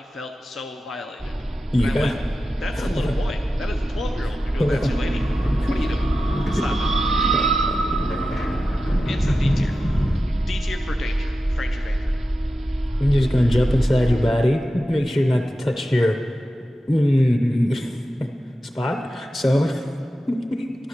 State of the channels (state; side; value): normal; both; correlation 0.93